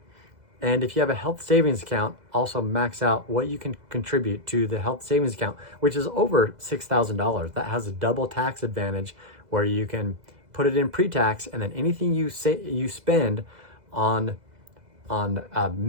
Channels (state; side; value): late; left; 2.0 ms